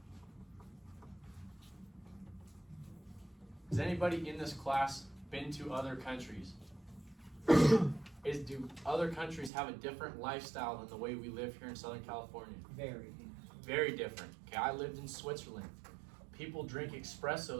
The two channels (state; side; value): drops out; left; at 9.5 s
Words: Has anybody in this class been to other countries? Do other countries have a different lifestyle than the way we live here in Southern California? Very. Very different. Okay, I lived in Switzerland. People drink